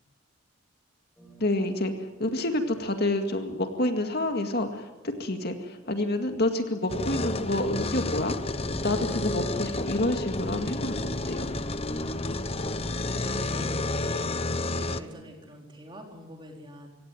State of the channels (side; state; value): both; normal; correlation 0.39